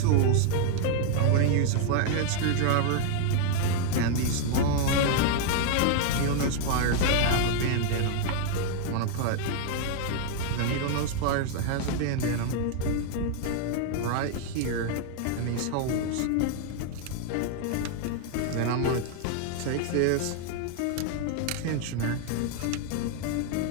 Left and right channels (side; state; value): both; different; correlation 0.00